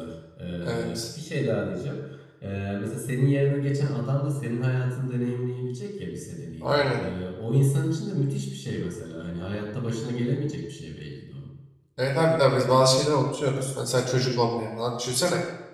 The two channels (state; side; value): identical; both; correlation 1.00